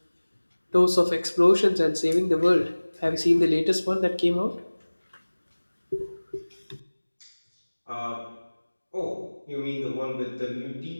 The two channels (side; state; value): both; inverted; correlation -1.00